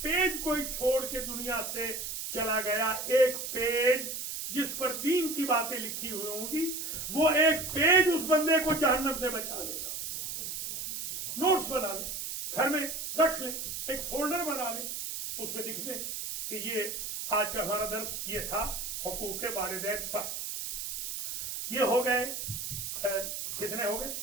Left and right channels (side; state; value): right; noise; hiss, 5 dB below the sound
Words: پیج کوئی چھوڑ کے دنیا سے چلا گیا، ایک پیج جس پر دین کی باتیں لکھی ہوئی ہوں گی، وہ ایک پیج اس بندے کو جہنم سے بچا دے گا۔ نوٹس بنا لیں، گھر میں رکھ لیں، ایک فولڈر بنا لیں، اس میں لکھ دیں کہ یہ آج کا ہمارا درس یہ تھا حقوق والدین پر۔ یہ ہو گئے کتنے ہو گئے؟